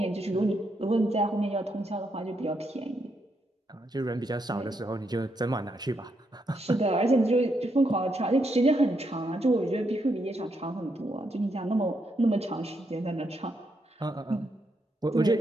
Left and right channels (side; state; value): both; normal; correlation 0.79